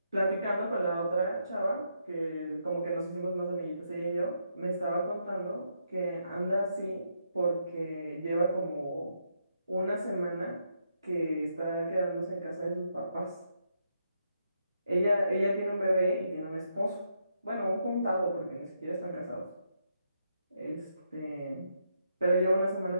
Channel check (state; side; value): inverted; both; correlation -0.79